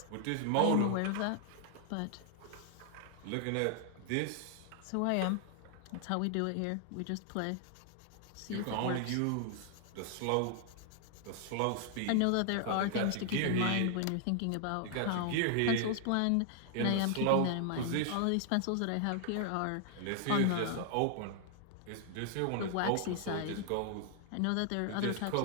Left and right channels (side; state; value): both; different; correlation 0.00